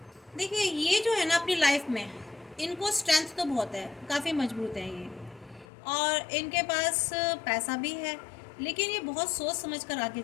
देखिए, ये जो है ना अपनी लाइफ में, इनको स्ट्रेंथ तो बहुत है, काफ़ी मजबूत है ये, और इनके पास पैसा भी है, लेकिन ये बहुत सोच समझ कर आगे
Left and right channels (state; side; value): drops out; right; at 5.7 s